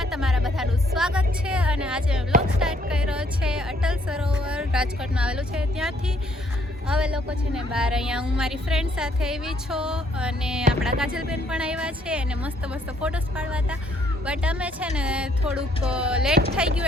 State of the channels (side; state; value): both; normal; correlation 0.66